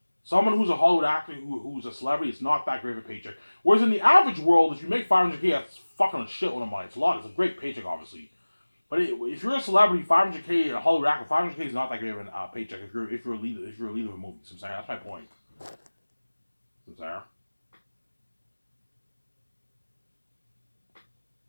Someone who's a Hollywood actor who's a celebrity, it's not that great of a paycheck. Whereas in the average world, if you make 500K, that's fucking a shitload of money. It's a lot. It's a great paycheck, obviously. But if you're a celebrity, 500K a Hollywood actor, 500K is not that great of a paycheck if you're a lead of a movie. So I'm saying that's my point. So I'm saying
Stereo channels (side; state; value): both; inverted; correlation -1.00